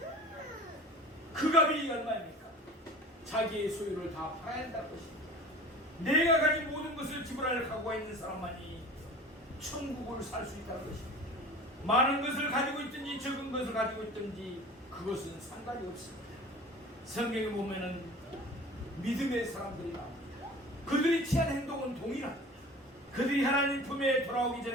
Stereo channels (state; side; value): normal; both; correlation 0.41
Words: 그 값이 얼마입니까? 자기의 소유를 다 팔아야 한다는 것입니다. 내가 가진 모든 것을 지불할 각오가 있는 사람만이 천국을 살 수 있다는 것입니다. 많은 것을 가지고 있든지 적은 것을 가지고 있든지 그것은 상관이 없습니다. 성경에 보면은 믿음의 사람들이 나옵니다. 그들이 취한 행동은 동일합니다. 그들이 하나님 품에 돌아오기